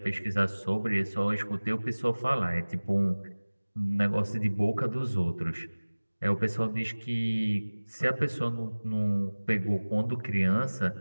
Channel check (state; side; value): inverted; both; correlation -1.00